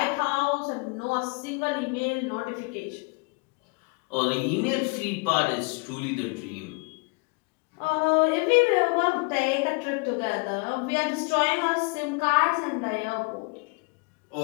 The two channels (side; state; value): right; quieter; 30.3 dB